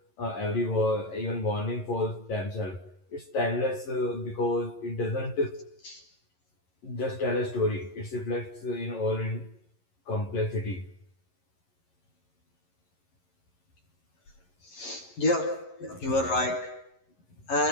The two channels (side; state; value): right; late; 11 ms